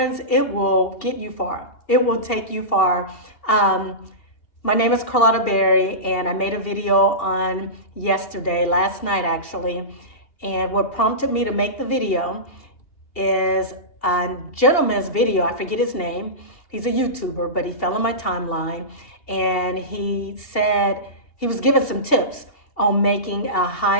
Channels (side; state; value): right; late; 2.7 ms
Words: it will get you far. It will take you far. My name is Carlotta Berry, and I made a video on last night actually. And what prompted me to make the video is a gentleman's video. I forget his name. He's a YouTuber, but he fell on my timeline, and he said he was given some tips on making a